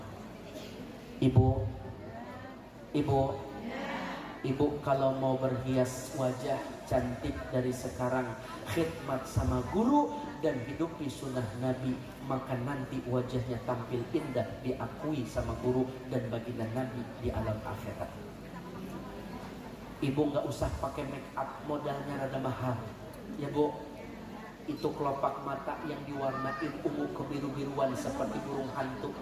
Ibu kalau mau berhias wajah cantik dari sekarang, khidmat sama guru dan hidupi sunnah Nabi, maka nanti wajahnya tampil indah, diakui sama guru dan baginda Nabi di alam akhirat. Ibu nggak usah pakai make up, modalnya rada mahal ya Bu. Itu kelopak mata yang diwarnain ungu kebiru-biruan seperti burung hantu,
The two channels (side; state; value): both; identical; correlation 1.00